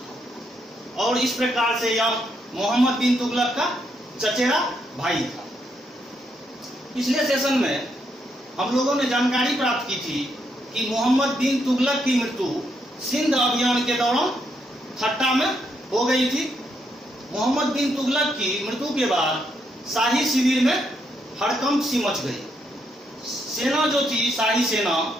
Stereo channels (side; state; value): both; normal; correlation 0.77